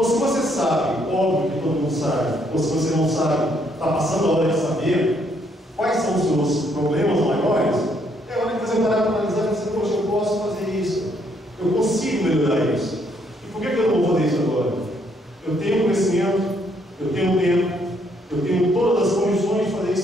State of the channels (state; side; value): normal; both; correlation 0.70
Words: se você sabe, óbvio que todo mundo sabe, ou se você não sabe, está passando a hora de saber quais são os seus problemas maiores, é hora de você parar para analisar e dizer, poxa, eu posso fazer isso, eu consigo melhorar isso. E por que eu não vou fazer isso agora? Eu tenho conhecimento, eu tenho tempo, eu tenho todas as condições de fazer